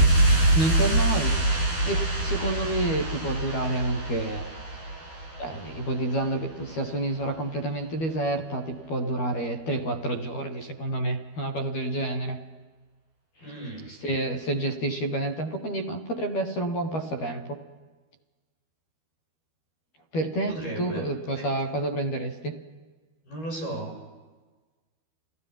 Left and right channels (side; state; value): right; late; 12 ms